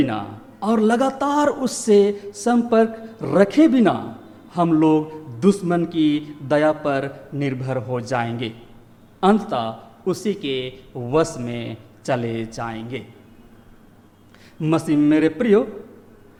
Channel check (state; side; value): identical; both; correlation 1.00